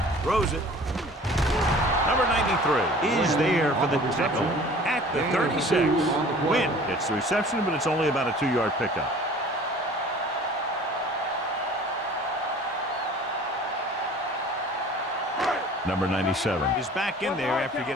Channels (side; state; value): both; normal; correlation 0.47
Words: Throws it. Number 93 is there for the tackle at the 36. Win gets the reception, but it's only about a 2-yard pickup. Number 97 is back in there after